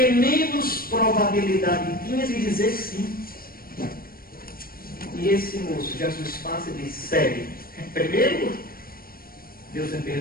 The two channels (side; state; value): right; late; 0.43 ms